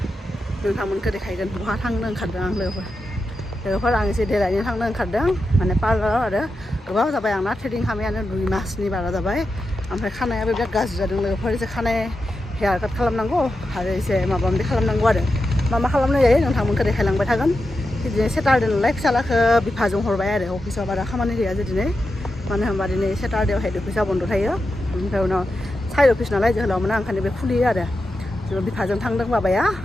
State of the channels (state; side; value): normal; both; correlation 0.89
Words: नोंथांमोनखौ देखायगोन बहा थांनो ओंखारदों आं लोगोफोर आं एसे देलायनो थांनो ओंखारदों माने पार्लाराव आरो गोबाव जाबाय आंना थ्रेडिं खालामनायानो 2 मासनि बारा जाबाय ओमफ्राय खानायाबो बिराद गाज्रि जादों लोगोफोर एसे खानाय हेयार काट खालामनांगौ आरो एसे माबा माबि खालामनांगौ आरो मा खालामनाय जायो नोंथांमोनखौ देखायलांबाय थागोन बिदिनो सेटारडे नालाय फिसालाखौ बिफाजों हरबाय आरो अफिसाव बारा खामानि गैया दिनै मानो होनबा दिनै सेटारडेआव हेड अफिसा बन्द थायो ओमफ्राय उनाव साइड अफिस नालाय जोहोलाव मोना ओंखायनो बे खुलियो आरो जों बिफाजों थांदों बाबाया